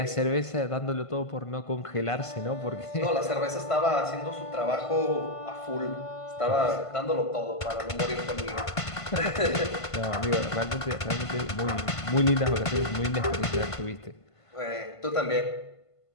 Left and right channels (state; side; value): late; right; 1.5 ms